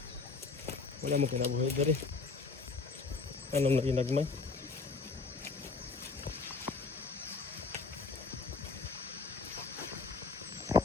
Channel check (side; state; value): right; quieter; 4.3 dB